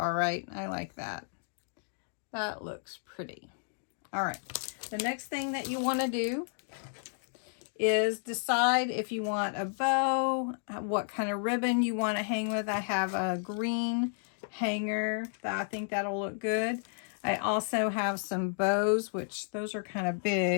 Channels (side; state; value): right; silent; digital silence